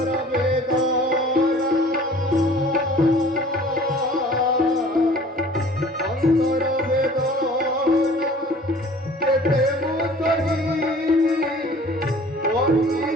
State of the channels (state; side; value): normal; both; correlation 0.48